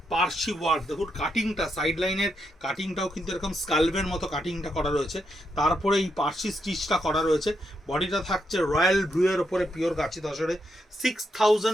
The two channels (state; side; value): normal; both; correlation 0.81